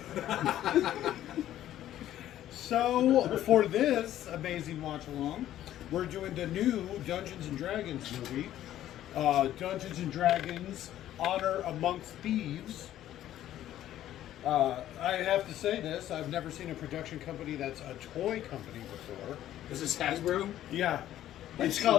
so for this amazing watch along, we're doing the new Dungeons and Dragons movie. Dungeons and Dragons Honor Amongst Thieves. I have to say this, I've never seen a production company that's a toy company before. Is this Hasbro? Yeah. It's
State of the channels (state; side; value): quieter; right; 12.5 dB